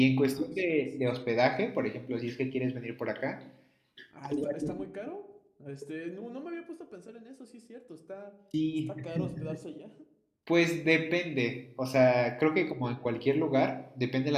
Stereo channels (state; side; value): identical; both; correlation 1.00